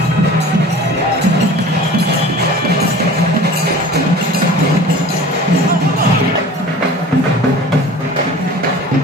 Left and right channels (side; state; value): both; normal; correlation 0.41